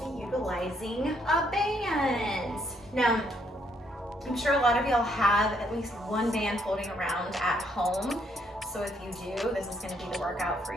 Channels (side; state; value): both; normal; correlation 0.71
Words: utilizing a band. Now, I'm sure a lot of y'all have at least one band floating around at home. So if you do, this is going to be the workout for